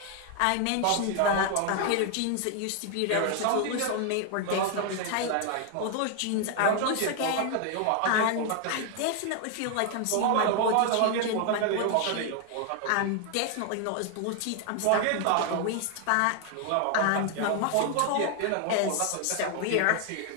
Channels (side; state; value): both; different; correlation 0.01